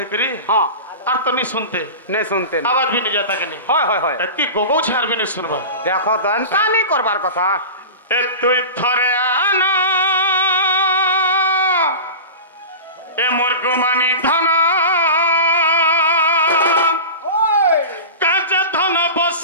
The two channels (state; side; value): inverted; both; correlation -0.31